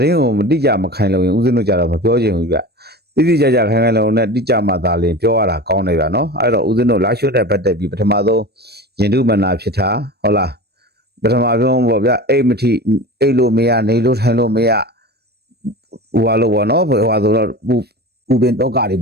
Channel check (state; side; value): late; left; 0.47 ms